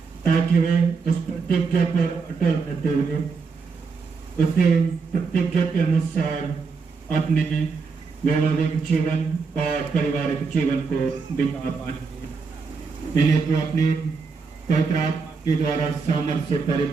ताकि वे उस प्रतिज्ञा पर अटल रहते हुए उसे प्रतिज्ञा के अनुसार अपने वैवाहिक जीवन और पारिवारिक जीवन को बिता पाएंगे। इन्हें तो अपने पवित्र आत्मा के द्वारा सामर्थ्य से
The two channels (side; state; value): left; quieter; 4.9 dB